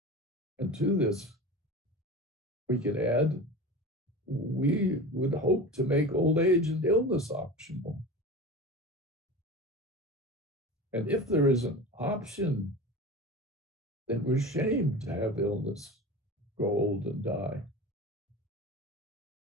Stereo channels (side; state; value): both; normal; correlation 0.31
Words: And to this, we could add, we would hope to make old age and illness optional. And if there is an option, then we're shamed to have illness, grow old, and die.